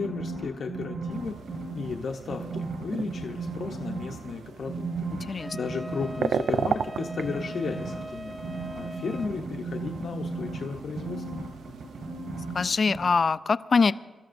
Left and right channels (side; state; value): both; normal; correlation 0.83